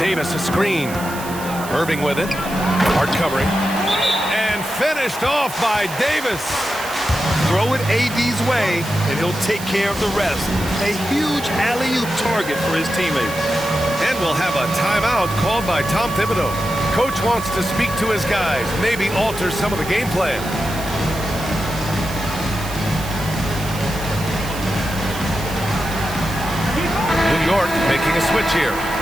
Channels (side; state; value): right; noise; hiss, 13 dB below the sound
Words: a screen. Irving with it. Hart covering. And finished off by Davis. Throw it AD's way, and he'll take care of the rest. A huge alley-oop target for his teammates. And we'll have a timeout called by Tom Thibodeau. Coach wants to speak to his guys, maybe alter some of the game plan. New York making a switch here.